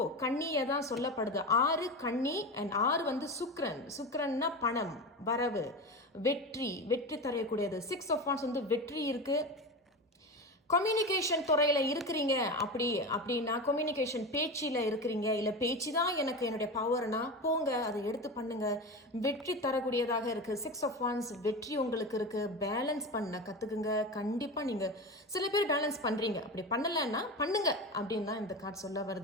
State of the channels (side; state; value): both; normal; correlation 0.24